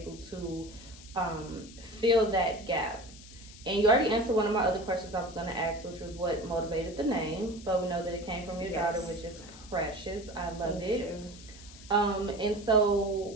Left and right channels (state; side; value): noise; left; hiss, 18 dB below the sound